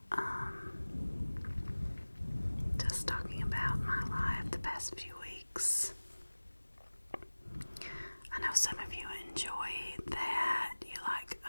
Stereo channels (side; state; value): both; inverted; correlation -1.00